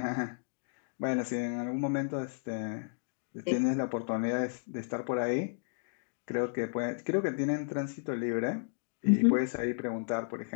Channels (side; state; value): right; silent; digital silence